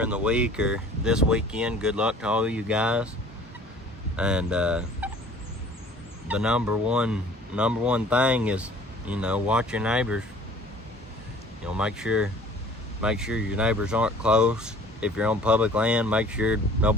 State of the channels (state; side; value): normal; both; correlation 0.50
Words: the week or this weekend. Good luck to all of you guys. And the number one thing is watch your neighbors. Make sure your neighbors aren't close. If you're on public land, make sure